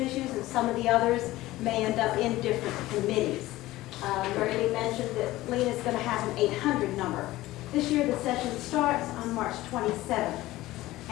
and some of the others may end up in different committees. Mary Lee mentioned that Lena's going to have an 800 number. This year the session starts on March 27th.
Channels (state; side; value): quieter; right; 17.2 dB